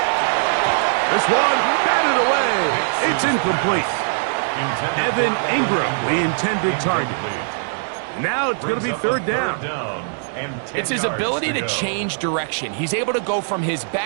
This one batted away. It's incomplete. Evan Ingram, the intended target. Now it's going to be third down. It's his ability to change direction. He's able to go from his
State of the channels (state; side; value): silent; left; digital silence